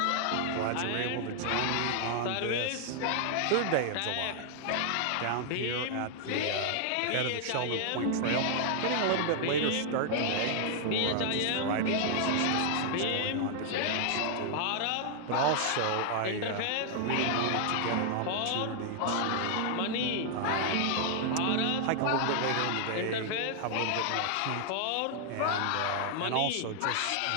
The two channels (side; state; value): both; different; correlation 0.00